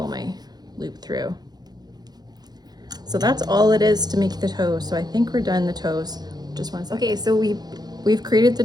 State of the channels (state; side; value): late; left; 0.19 ms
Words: my loop through. So that's all it is to make the toes. So I think we're done the toes. Just 1 second. Okay, so we've created the